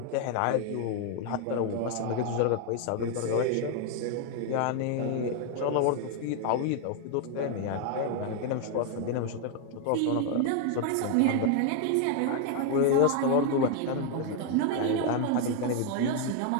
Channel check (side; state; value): both; different; correlation 0.00